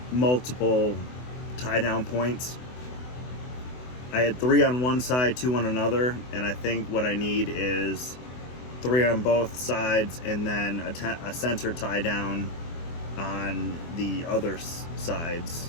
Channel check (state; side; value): late; right; 24 ms